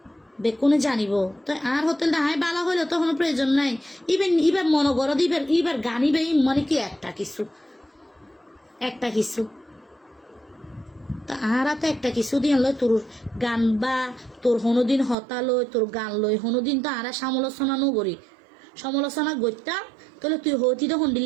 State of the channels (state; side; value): drops out; left; at 15.2 s